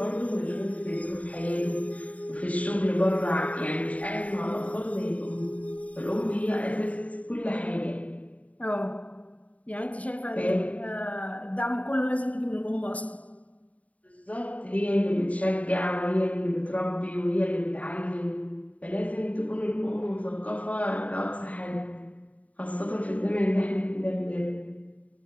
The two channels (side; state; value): right; late; 0.069 ms